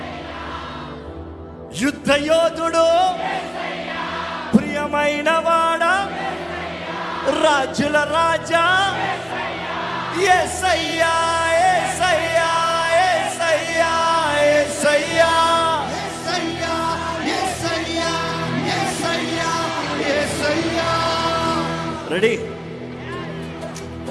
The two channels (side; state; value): both; identical; correlation 1.00